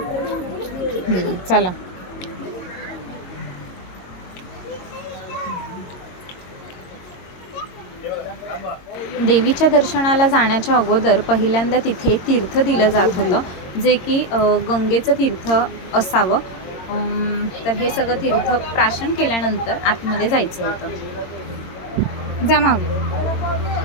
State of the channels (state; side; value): late; right; 22 ms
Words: चला. देवीच्या दर्शनाला जाण्याच्या अगोदर पहिल्यांदा तिथे तीर्थ दिलं जात होतं, जे की गंगेचं तीर्थ असावं. तर हे सगळं तीर्थ प्राशन केल्यानंतर आतमध्ये जायचं होतं. जमा.